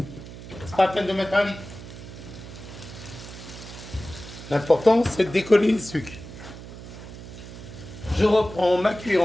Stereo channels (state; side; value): noise; right; hum, 13 dB below the sound